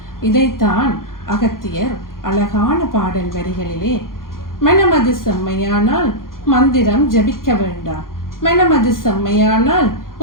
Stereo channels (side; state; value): right; late; 0.91 ms